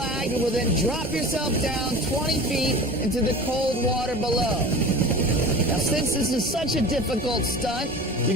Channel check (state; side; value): normal; both; correlation 0.37